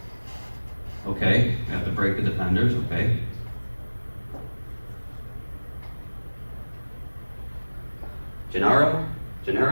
Okay, we have to break the defenders, okay. Gennaro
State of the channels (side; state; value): both; inverted; correlation -1.00